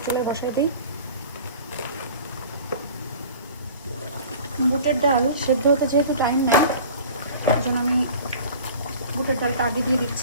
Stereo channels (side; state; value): both; inverted; correlation -0.42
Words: চুলায় বসাই দিই। বুটের ডাল সেদ্ধ হতে যেহেতু টাইম নেয়, এই জন্য আমি বুটের ডালটা আগে দিয়ে